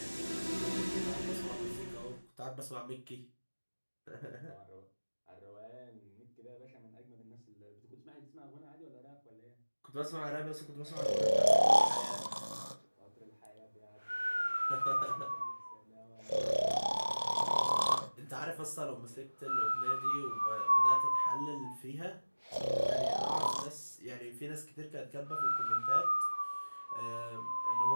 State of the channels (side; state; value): both; inverted; correlation -1.00